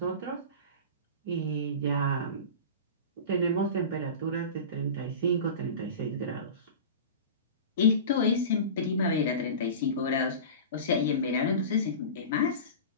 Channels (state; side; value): inverted; both; correlation -0.31